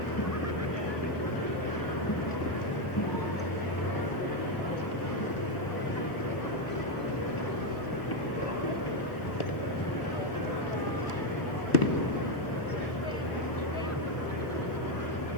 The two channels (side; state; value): right; late; 1.0 ms